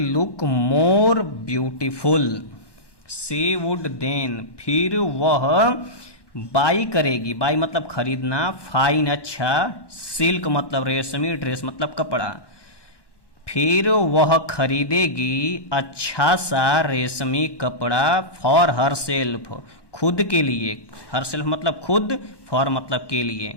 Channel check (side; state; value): right; late; 1.1 ms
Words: look more beautiful. She would then फिर वह बाई करेगी, बाई मतलब खरीदना, फाइन अच्छा, सिल्क मतलब रेशमी, ड्रेस मतलब कपड़ा, फिर वह खरीदेगी अच्छा सा रेशमी कपड़ा फॉर हर सेल्फ खुद के लिए, हर सेल्फ मतलब खुद, फॉर मतलब के लिए,